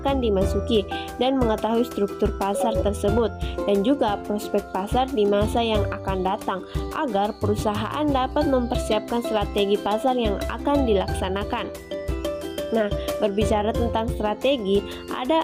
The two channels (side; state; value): both; identical; correlation 1.00